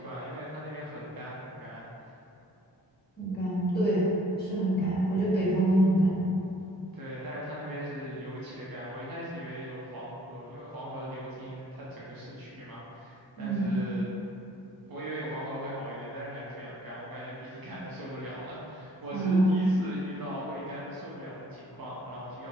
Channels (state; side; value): normal; both; correlation 0.60